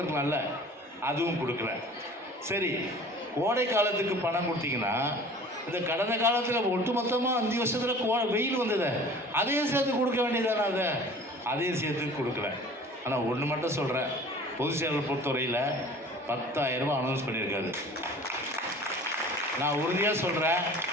அதுவும் கொடுக்கல. சரி, கோடை காலத்துக்கு பணம் கொடுத்தீங்கன்னா இந்த கடந்த காலத்தில் ஒட்டுமொத்தமாக 5 வருஷத்தில் வெயில் வந்தது, அதையும் சேர்த்து கொடுக்க வேண்டியதானே, அதையும் சேர்த்து கொடுக்கல. ஆனால் ஒன்று மட்டும் சொல்கிறேன், பொதுச் செயலர் பொறுத்தவரையில் 10,000 ரூபாய் அனௌன்ஸ் பண்ணியிருக்காரு. நான் உறுதியாக சொல்கிறேன்,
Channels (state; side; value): normal; both; correlation 0.44